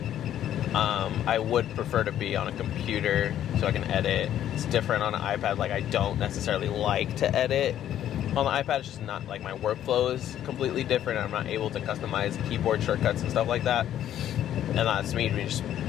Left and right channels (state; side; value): quieter; right; 11.2 dB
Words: I would prefer to be on a computer so I can edit. It's different on an iPad. Like, I don't necessarily like to edit on the iPad. It's just not, like, my workflow is completely different. I'm not able to customize keyboard shortcuts and stuff like that. And that's me just